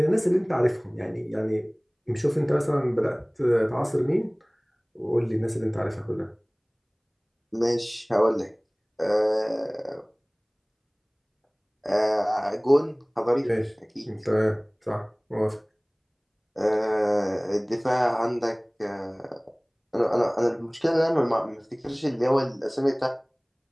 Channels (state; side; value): identical; both; correlation 1.00